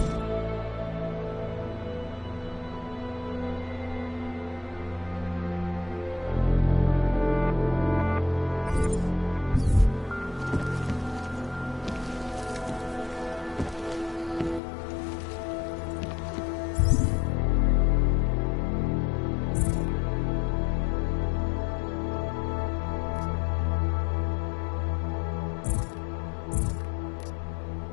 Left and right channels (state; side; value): drops out; right; at 14.6 s